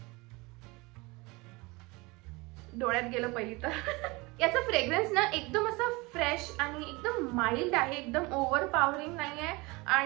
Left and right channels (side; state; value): left; quieter; 24.7 dB